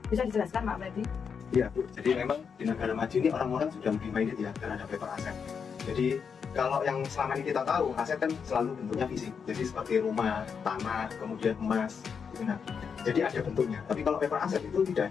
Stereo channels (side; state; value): right; quieter; 6.4 dB